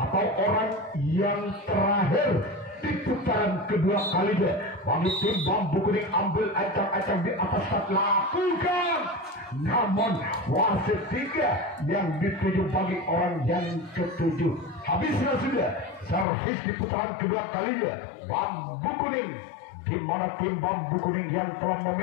orang yang terakhir di putaran kedua kalinya bagi tim bambu kuning ambil ancang-ancang di atas start. Lakukan, namun wasit 3 yang dituju bagi orang yang ke-7. Habislah sudah servis di putaran kedua kalinya bambu kuning, di mana tim bambu kuning yang telah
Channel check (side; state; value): right; drops out; at 16.2 s